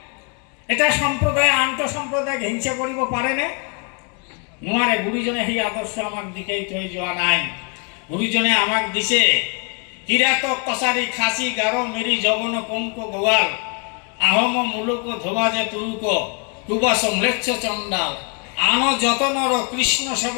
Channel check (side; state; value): right; quieter; 36.3 dB